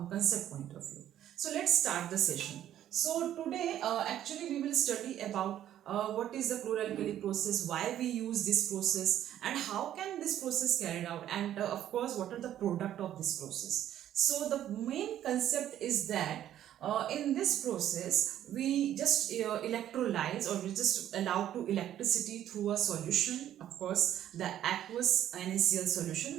concept point of view. So let's start the session. So today actually we will study about what is the chlor-alkali process, why we use this process, and how can this process carried out, and of course what are the product of this process. So the main concept is that in this process we just electrolyze, or we just allow to electricity through a solution, of course the aqueous NaCl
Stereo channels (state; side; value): quieter; left; 11.5 dB